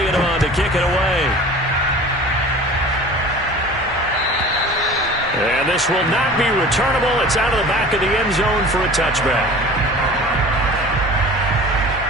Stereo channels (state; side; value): normal; both; correlation 0.41